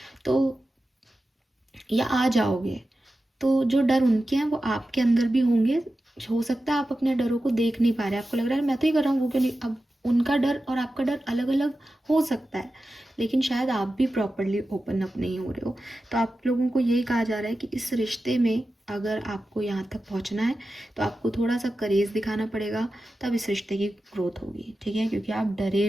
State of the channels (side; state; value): both; normal; correlation 0.93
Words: तो या आ जाओगे, तो जो डर उनके हैं वो आपके अंदर भी होंगे। हो सकता है आप अपने डरों को देख नहीं पा रहे, आपको लग रहा है मैं तो ही कर रहा हूँ, वो क्यों नहीं। अब उनका डर और आपका डर अलग अलग हो सकता है, लेकिन शायद आप भी प्रॉपरली ओपन अप नहीं हो रहे हो। तो आप लोगों को यही कहा जा रहा है कि इस रिश्ते में अगर आपको यहाँ तक पहुँचना है तो आपको थोड़ा सा करेज दिखाना पड़ेगा, तब इस रिश्ते की ग्रोथ होगी, ठीक है, क्योंकि आप डरे